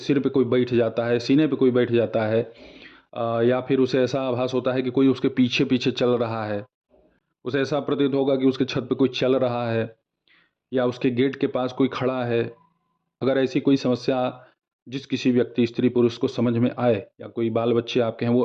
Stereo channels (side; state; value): both; identical; correlation 1.00